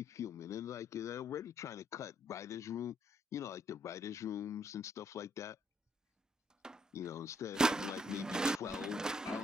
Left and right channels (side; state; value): both; normal; correlation 0.70